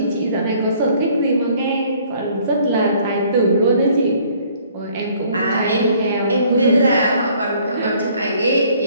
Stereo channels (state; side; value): inverted; both; correlation -0.60